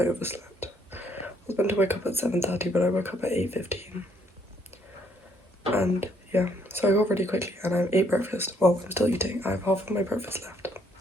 overslept. I was meant to wake up at 7:30, but I woke up at 8:15. And yeah, so I got ready quickly and I ate breakfast. Well, I'm still eating. I have half of my breakfast left.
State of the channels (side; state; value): both; normal; correlation 0.68